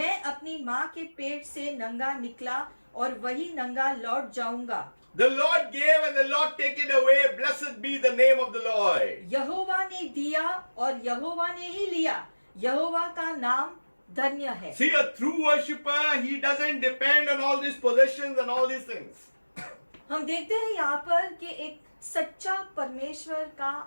अपनी माँ के पेट से नंगा निकला और वही नंगा लौट जाऊंगा। The Lord gave and the Lord take it away. Blessed be the name of the Lord. यहोवा ने दिया और यहोवा ने ही लिया, यहोवा का नाम धन्य है। See, a true worshipper, he doesn't depend on all these possessions and all these things. हम देखते हैं यहाँ पर कि एक सच्चा परमेश्वर का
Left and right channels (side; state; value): both; inverted; correlation -1.00